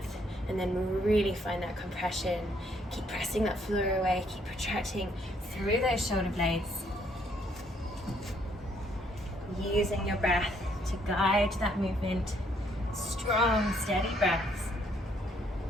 and then really find that compression. Keep pressing that floor away. Keep protracting through those shoulder blades. Using your breath to guide that movement. Strong, steady breaths.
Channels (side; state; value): both; normal; correlation 0.68